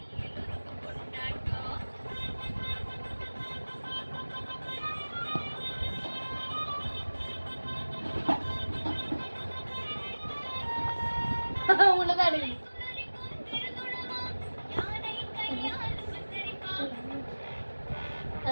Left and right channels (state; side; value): inverted; both; correlation -1.00